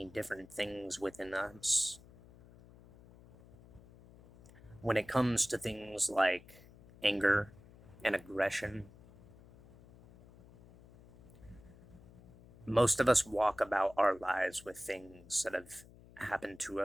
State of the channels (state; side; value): noise; left; hum, 22 dB below the sound